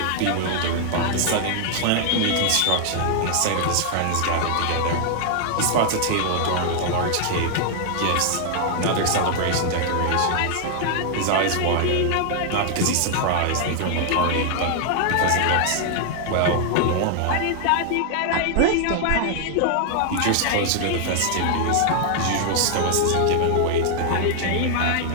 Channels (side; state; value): both; different; correlation 0.00